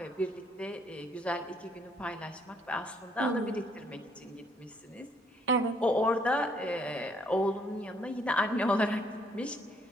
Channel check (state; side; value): normal; both; correlation 0.67